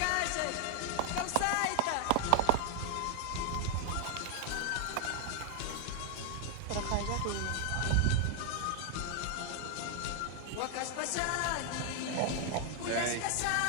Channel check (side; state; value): both; different; correlation 0.00